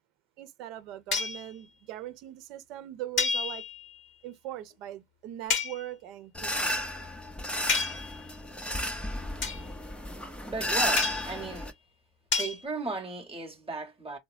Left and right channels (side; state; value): both; normal; correlation 0.34